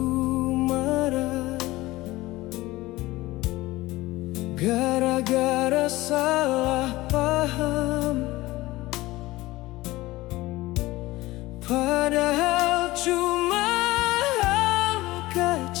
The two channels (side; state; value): right; quieter; 18.9 dB